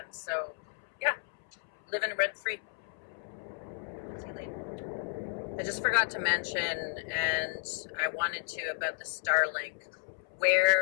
So yeah, living rent free. See you later. I just forgot to mention, and I wanted to, about the Starlink.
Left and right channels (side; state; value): right; silent; 56 dB below the other